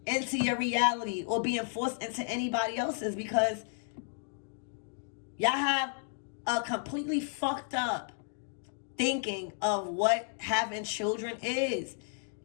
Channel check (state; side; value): silent; right; 56 dB below the other